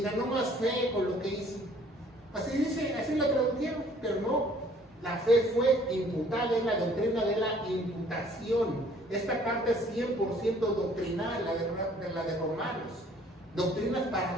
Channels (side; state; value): both; normal; correlation 0.58